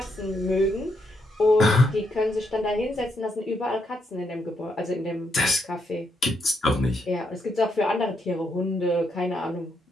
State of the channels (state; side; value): normal; both; correlation 0.78